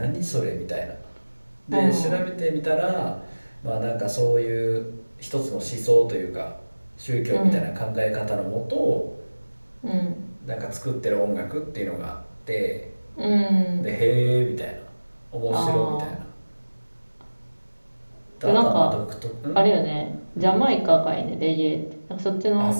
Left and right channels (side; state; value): both; inverted; correlation -1.00